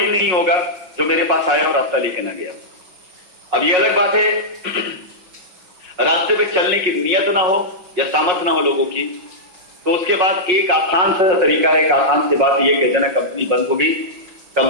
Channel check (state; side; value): late; left; 5.7 ms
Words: नहीं होगा जो मेरे पास आया और रास्ता लेके ना गया। अब ये अलग बात है रास्ते पे चलने की नियत ना हो या सामर्थ्य ना हो लोगों की, तो उसके बाद एक आसान सा तरीका है, एक आसान सी बात यह कह देना कंपनी बंद हो गई,